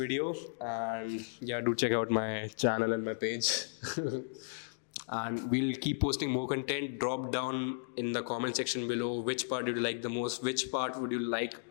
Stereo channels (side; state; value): right; silent; digital silence